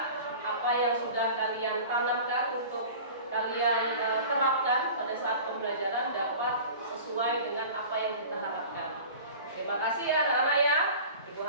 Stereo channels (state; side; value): inverted; both; correlation -0.39